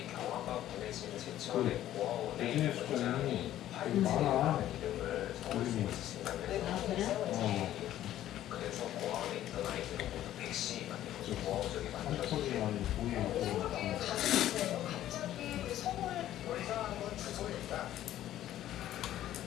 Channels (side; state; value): right; quieter; 12.8 dB